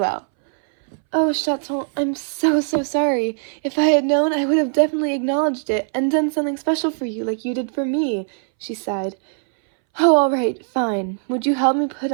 "Oh, Chaton, I'm so sorry. If I had known, I would have definitely acknowledged it and done something special for you like you did for me," she sighed. "Oh, all right, fine. Would you help me put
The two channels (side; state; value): left; silent; 63 dB below the other